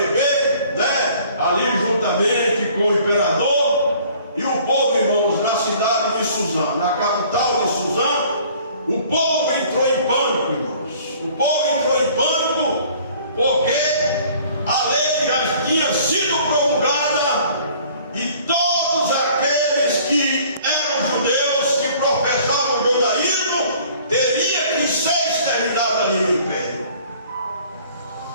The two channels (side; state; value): both; inverted; correlation -0.53